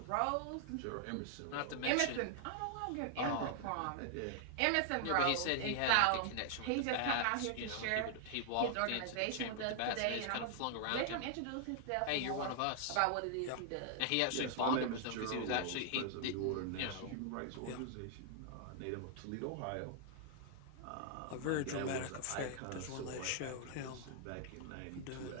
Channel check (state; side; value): different; both; correlation -0.01